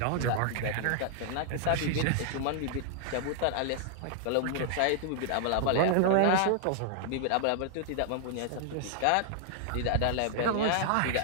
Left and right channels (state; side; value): different; both; correlation -0.01